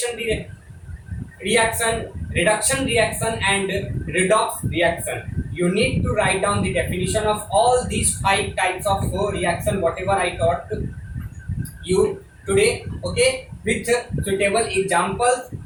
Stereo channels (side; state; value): both; identical; correlation 1.00